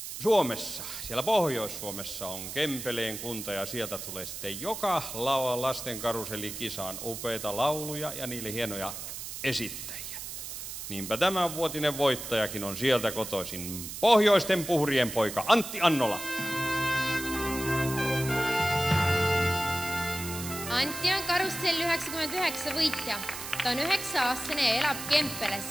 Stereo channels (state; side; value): noise; right; hiss, 8 dB below the sound